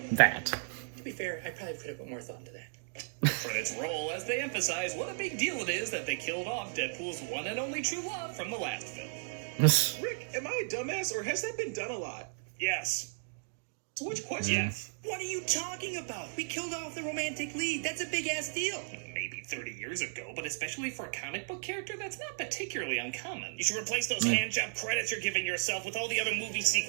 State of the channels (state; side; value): silent; left; digital silence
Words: That. To be fair, I probably could have put more thought into that. Credits roll as they emphasize what a big deal it is that they killed off Deadpool's one and only true love from the last film. Rick, am I a dumbass, or has that been done a lot? Yes. So which question? Yes. What are you talking about? We killed off the romantic lead. That's a big-ass deal. Maybe 30 years ago, but especially for a comic book character, that's not particularly uncommon. You should replace those hand-job credits you're giving yourself with all the other movie